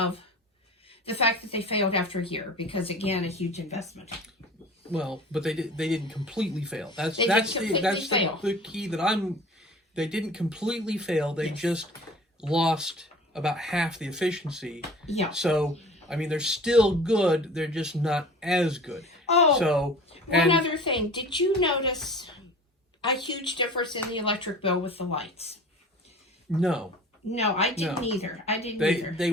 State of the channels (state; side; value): normal; both; correlation 0.42